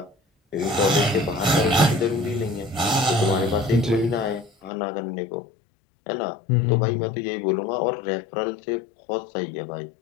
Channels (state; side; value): drops out; right; at 4.7 s